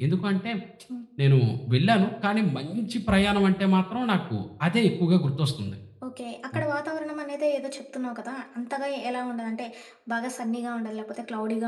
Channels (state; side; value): identical; both; correlation 1.00